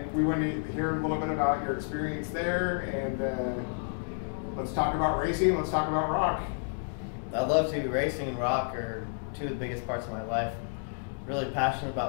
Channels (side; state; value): right; silent; digital silence